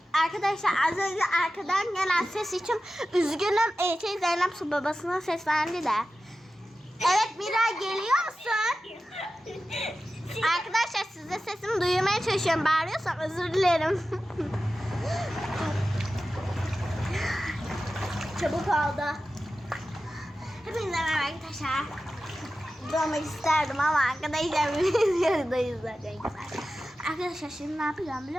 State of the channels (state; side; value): normal; both; correlation 0.94